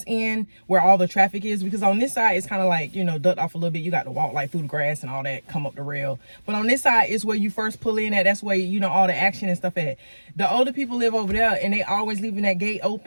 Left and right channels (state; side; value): inverted; both; correlation -1.00